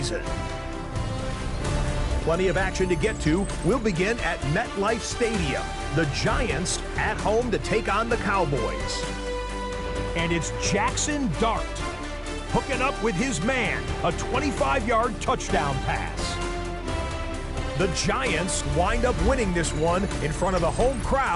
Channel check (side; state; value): both; identical; correlation 1.00